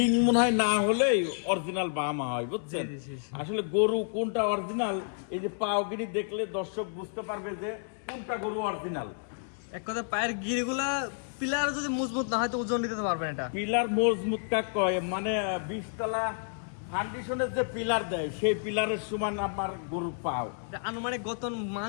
মনে হয় না হলেই অরিজিনাল বাহামা হয়, বুঝছেন? আসলে গরু কোনটা অরিজিনাল এই যে পাওগিরি দেখলে দর্শক বুঝতে পারবে যে কোনটা গরু অরিজিনাল। এক কথা পায়ের গিরিগুলা পিলার যদি মজবুত না হয় তো ওজন দিতে পারবেন এটা। পিলার মজবুত কাক কয়, মানে 20 তলা ফাউন্ডেশনের যে পিলার দেয় সেই পিলারের সমান আমার গরু পাও। আনুমানিক গতন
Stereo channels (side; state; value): right; silent; 58 dB below the other